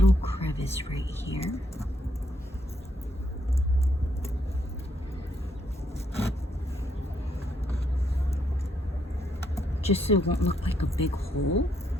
crevice right here. Just so it won't look like a big hole.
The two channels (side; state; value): both; normal; correlation 0.75